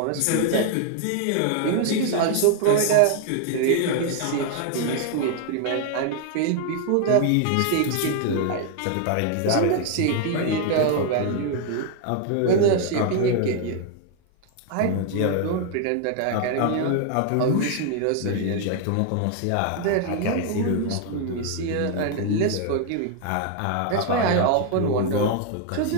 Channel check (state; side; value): different; both; correlation 0.00